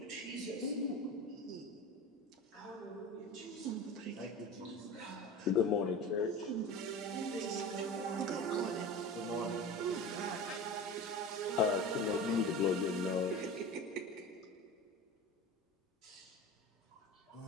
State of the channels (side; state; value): both; normal; correlation 0.32